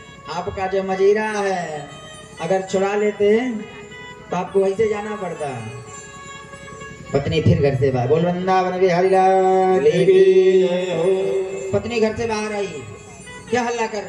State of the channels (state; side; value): identical; both; correlation 1.00